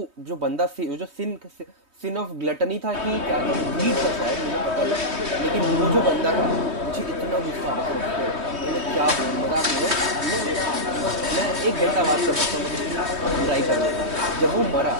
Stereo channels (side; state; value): left; late; 3.2 ms